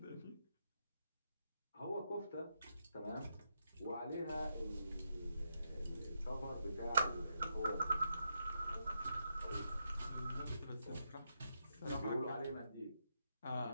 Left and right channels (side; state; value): both; inverted; correlation -0.82